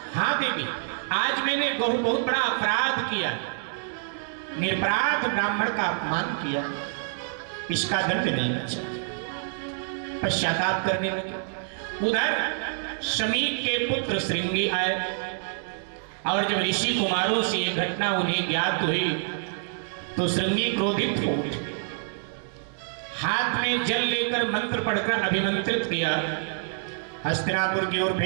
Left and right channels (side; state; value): left; silent; digital silence